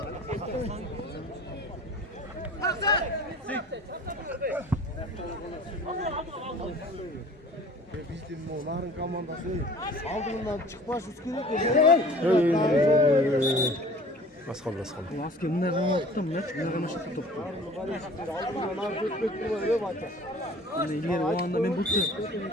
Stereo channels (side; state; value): both; normal; correlation 0.46